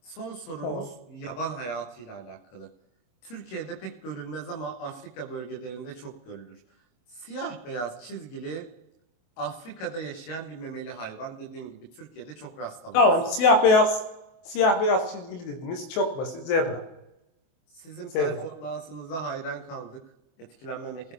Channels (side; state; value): right; late; 25 ms